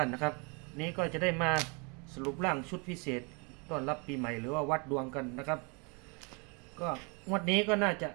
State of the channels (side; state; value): left; quieter; 32.0 dB